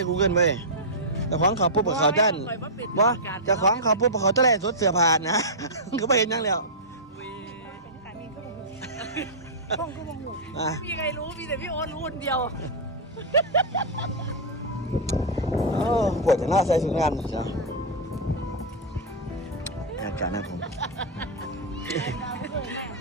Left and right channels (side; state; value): both; normal; correlation -0.09